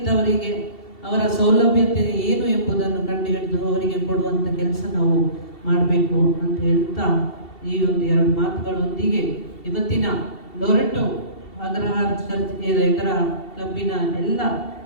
ಅವರ ಸೌಲಭ್ಯತೆ ಏನು ಎಂಬುದನ್ನು ಕಂಡುಹಿಡಿದು ಅವರಿಗೆ ಕೊಡುವಂಥ ಕೆಲಸ ನಾವು ಮಾಡಬೇಕು ಅಂತ ಹೇಳ್ತಾ ಈ ಒಂದು 2 ಮಾತುಗಳೊಂದಿಗೆ ಇವತ್ತಿನ ಲೊರೆಟೋ ಅಗ್ರಹಾರ ಚರ್ಚ್ ಇದರ ಕ್ಲಬ್ಬಿನ ಎಲ್ಲ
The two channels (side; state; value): right; late; 2.7 ms